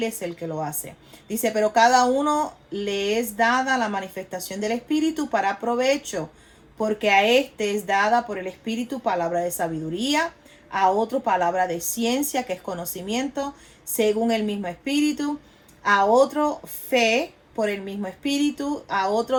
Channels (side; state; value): both; identical; correlation 1.00